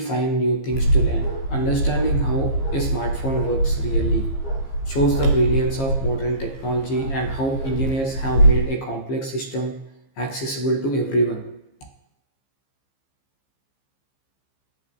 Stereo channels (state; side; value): late; right; 15 ms